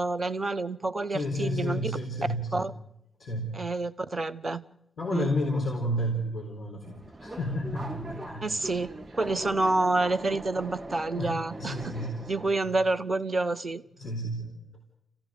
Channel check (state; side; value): normal; both; correlation 0.78